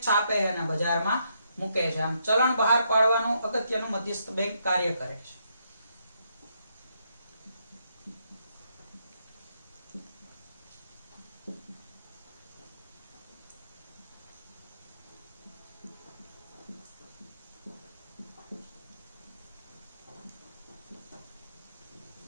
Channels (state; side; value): inverted; both; correlation -0.77